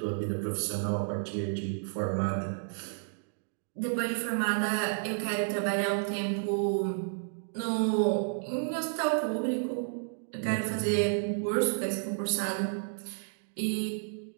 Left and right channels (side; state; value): left; silent; digital silence